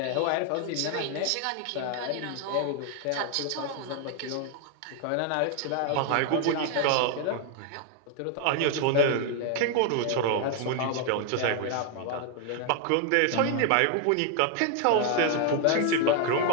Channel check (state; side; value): different; both; correlation 0.00